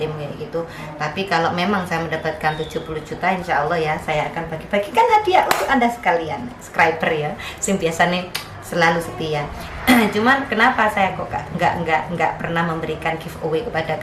kayak gitu. Tapi kalau memang saya mendapatkan 70 juta, insya Allah ya saya akan bagi-bagikan hadiah untuk Anda sekalian, subscriber ya, yang biasa nih selalu setia. Cuman kenapa saya kok nggak pernah memberikan giveaway kepada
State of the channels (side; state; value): both; identical; correlation 1.00